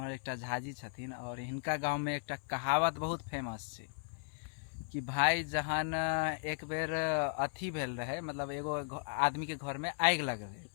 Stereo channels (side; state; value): right; silent; digital silence